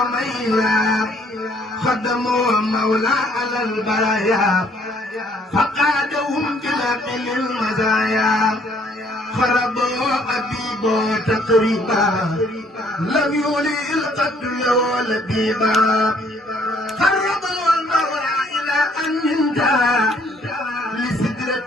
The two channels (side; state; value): both; normal; correlation 0.63